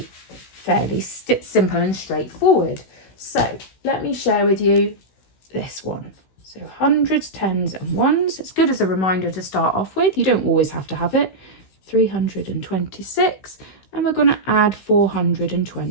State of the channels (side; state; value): right; late; 16 ms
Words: fairly simple and straightforward. So let me share with you this one. So hundreds, tens and ones. It's good as a reminder to start off with. You don't always have to have it. 326. And we're going to add